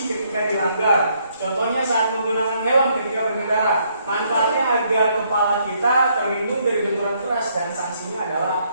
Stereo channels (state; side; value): inverted; both; correlation -0.71